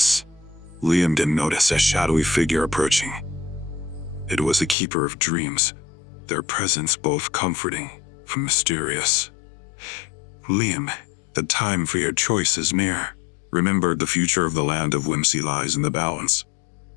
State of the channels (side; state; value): right; drops out; at 4.8 s